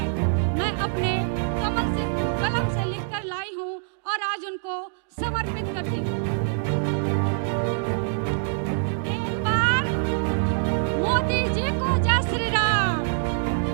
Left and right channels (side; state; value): left; silent; digital silence